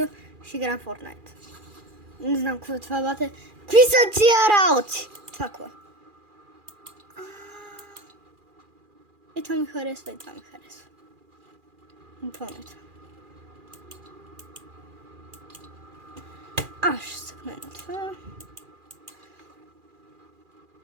Ще играем Fortnite. Не знам какво е това, бате. Какви са тия работи? Това какво е? И това ми харесва, и това ми харесва. Буквално това. Аз ще съкна на това.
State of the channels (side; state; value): left; late; 2.4 ms